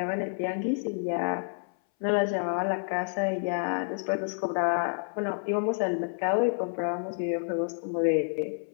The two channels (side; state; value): right; silent; 59 dB below the other